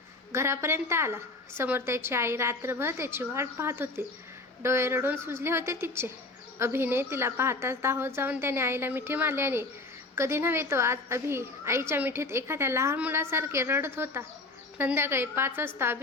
घरापर्यंत आला. समोर त्याची आई रात्रभर त्याची वाट पाहत होती. डोळे रडून सुजले होते तिचे. अभिने तिला पाहताच धावत जाऊन त्याने आईला मिठी मारली आणि कधी नव्हे तो आज अभि आईच्या मिठीत एखाद्या लहान मुलासारखे रडत होता. संध्याकाळी 5 वाजता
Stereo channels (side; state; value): right; quieter; 3.1 dB